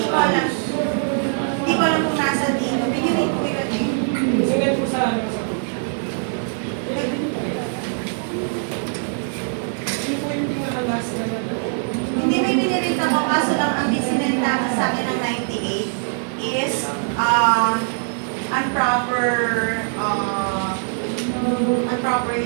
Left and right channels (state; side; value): silent; left; 64 dB below the other